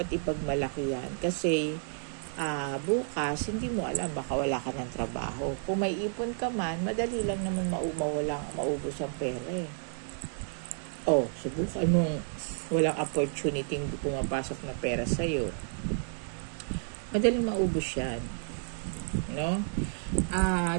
ipagmalaki yan, kasi bukas, hindi mo alam, baka wala ka ng trabaho. Kung may ipon ka man, madali lang naman maubos ang pera Oh, subukan mong walang opportunity pumapasok na pera sa'yo. Madaling maubos yan. No?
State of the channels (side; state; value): left; silent; digital silence